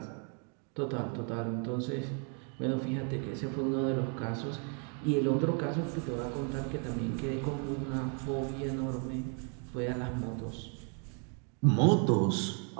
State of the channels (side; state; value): left; quieter; 39.4 dB